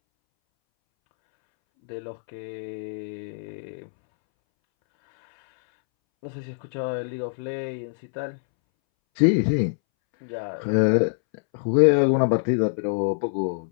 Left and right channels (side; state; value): right; silent; 62 dB below the other